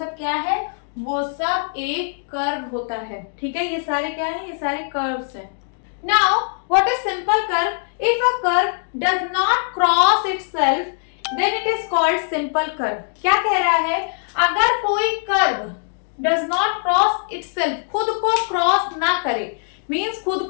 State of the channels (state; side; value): silent; right; digital silence